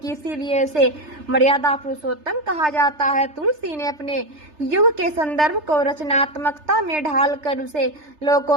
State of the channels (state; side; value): late; left; 3.3 ms